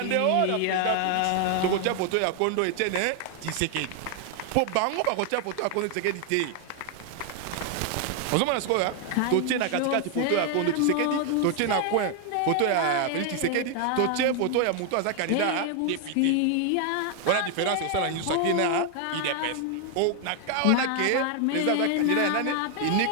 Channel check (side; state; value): both; different; correlation 0.00